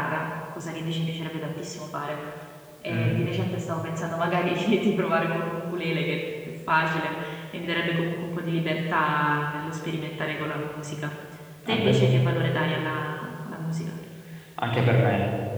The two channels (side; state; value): both; identical; correlation 1.00